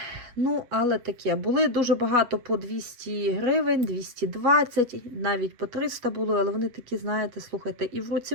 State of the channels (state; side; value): late; left; 8.2 ms